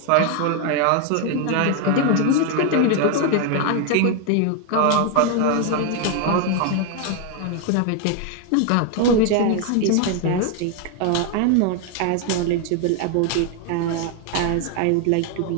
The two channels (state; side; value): different; both; correlation 0.01